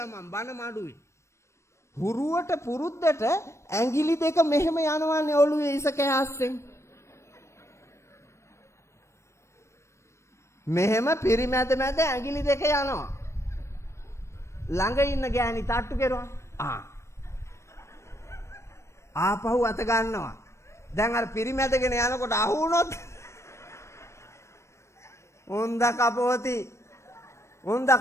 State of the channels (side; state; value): right; late; 0.13 ms